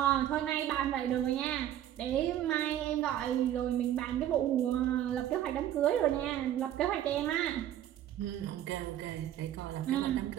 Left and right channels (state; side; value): quieter; left; 11.7 dB